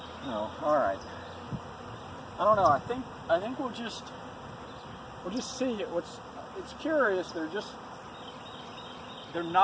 No, all right. I don't know. I think we'll just see it. It's curious. They're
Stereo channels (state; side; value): identical; both; correlation 1.00